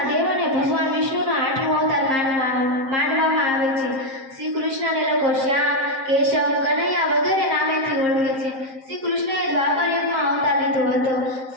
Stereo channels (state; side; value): late; left; 7.6 ms